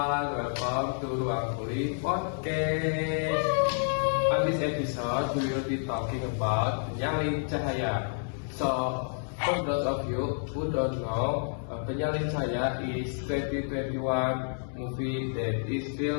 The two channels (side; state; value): right; silent; digital silence